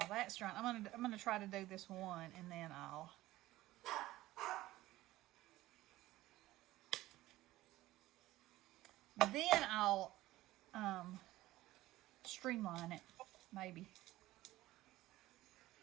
that's drying, I'm gonna try to do this one, and then I'll streamline it, maybe.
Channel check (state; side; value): quieter; left; 16.6 dB